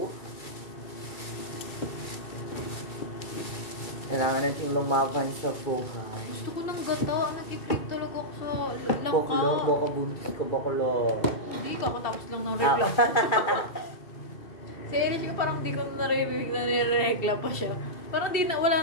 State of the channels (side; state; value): right; late; 2.7 ms